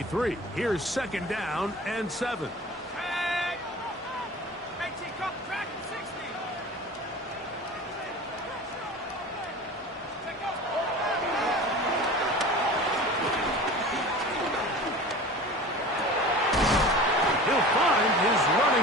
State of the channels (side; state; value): both; normal; correlation 0.37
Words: here's 2nd down and 7.